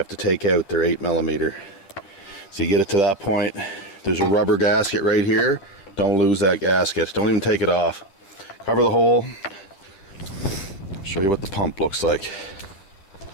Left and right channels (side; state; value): right; late; 10 ms